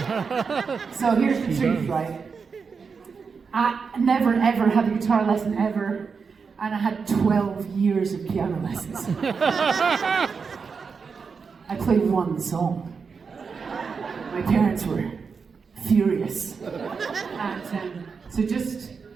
So here's the truth, right? I never ever had a guitar lesson ever, and I had 12 years of piano lessons. I played one song. My parents were furious. And so just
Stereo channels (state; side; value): quieter; left; 5.4 dB